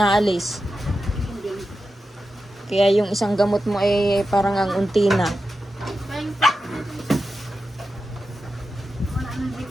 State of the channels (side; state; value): both; normal; correlation 0.91